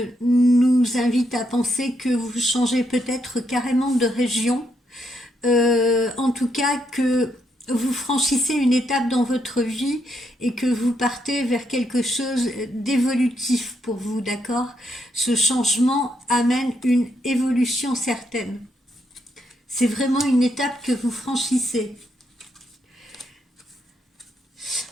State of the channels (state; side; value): normal; both; correlation 0.78